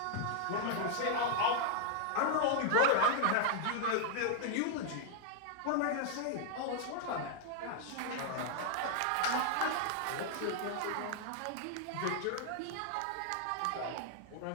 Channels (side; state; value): both; different; correlation 0.00